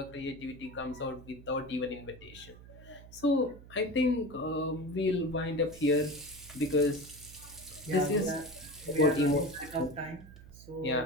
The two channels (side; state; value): right; noise; hum, 18 dB below the sound